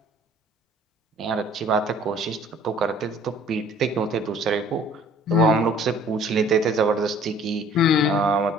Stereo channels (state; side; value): normal; both; correlation 0.54